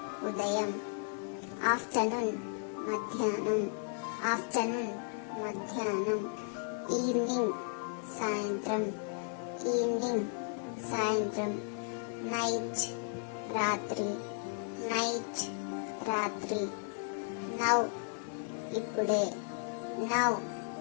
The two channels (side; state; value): right; silent; 55 dB below the other